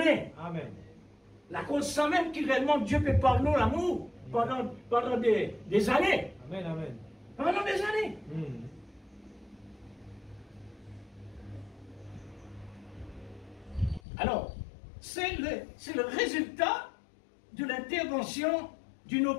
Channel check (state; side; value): drops out; right; at 14.0 s